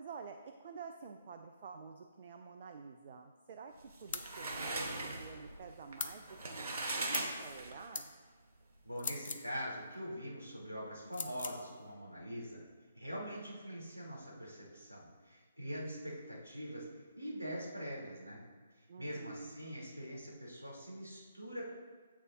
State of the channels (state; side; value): inverted; both; correlation -0.73